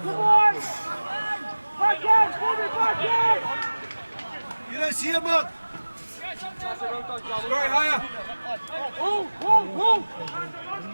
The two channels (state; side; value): inverted; both; correlation -1.00